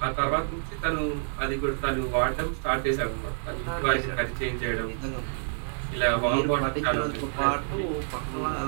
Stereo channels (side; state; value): left; silent; 59 dB below the other